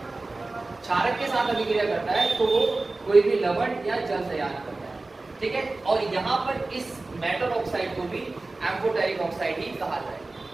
क्षारक के साथ अभिक्रिया करता है तो वो कोई भी लवण या जल तैयार करता है, ठीक है। और यहाँ पर इस मेटल ऑक्साइड को भी एम्फोटेरिक ऑक्साइड ही कहा जाए।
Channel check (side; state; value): left; quieter; 3.3 dB